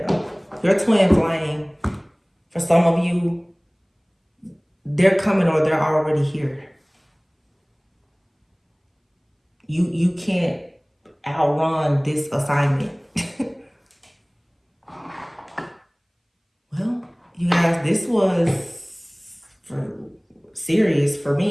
Your twin flame. For some of you, they're coming or they're already here. You can't outrun this assignment. Well, you guys, this was serious for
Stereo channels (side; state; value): both; identical; correlation 1.00